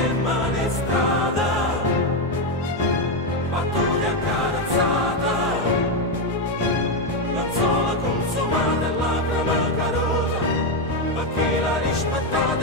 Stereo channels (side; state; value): both; normal; correlation 0.06